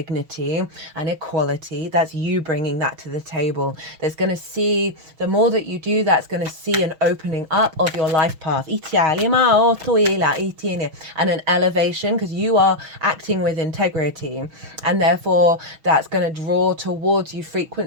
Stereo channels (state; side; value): late; left; 6.3 ms